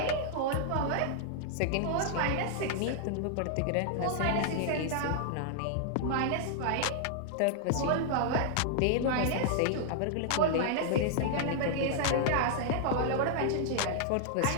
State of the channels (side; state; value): both; different; correlation -0.01